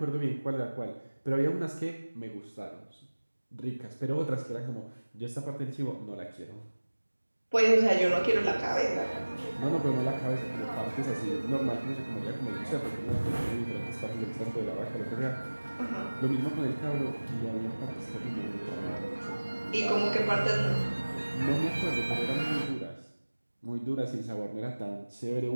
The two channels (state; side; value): inverted; both; correlation -1.00